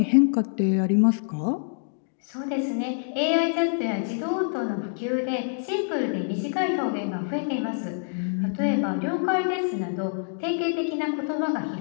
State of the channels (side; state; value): right; silent; digital silence